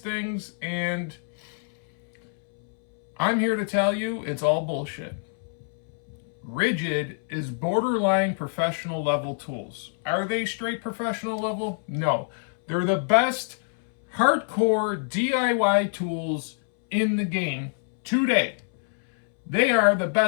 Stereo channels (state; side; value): silent; right; 61 dB below the other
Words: and I'm here to tell you it's all bullshit. Ridgid is borderline professional level tools. Are they straight professional level? No. They're the best hardcore DIY tools in the game today. They are the